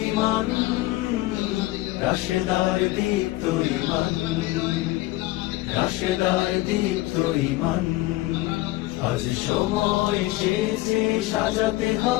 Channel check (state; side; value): quieter; right; 18.3 dB